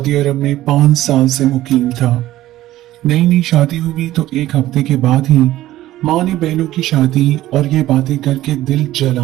अरब में 5 साल से मुकीम था। नई नई शादी हुई तो एक हफ्ते के बाद ही माँ ने बहनों की शादी और ये बातें करके दिल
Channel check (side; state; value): left; quieter; 15.0 dB